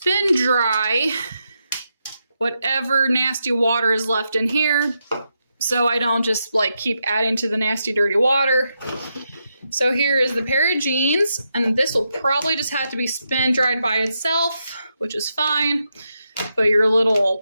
dry whatever nasty water is left in here, so I don't just like keep adding to the nasty dirty water. So here is the pair of jeans, and this will probably just have to be spin dried by itself, which is fine. Put your little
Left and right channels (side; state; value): both; inverted; correlation -0.84